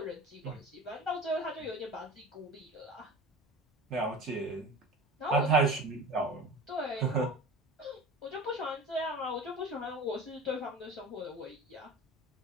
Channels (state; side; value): normal; both; correlation 0.36